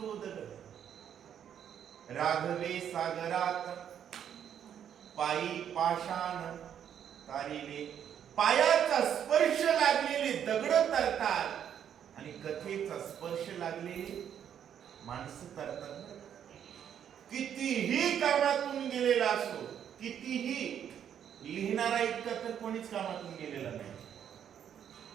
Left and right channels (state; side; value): quieter; left; 9.1 dB